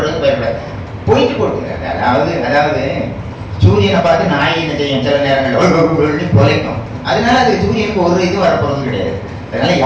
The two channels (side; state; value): both; identical; correlation 1.00